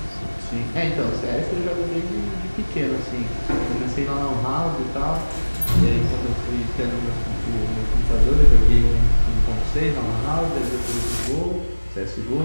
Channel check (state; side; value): inverted; both; correlation -1.00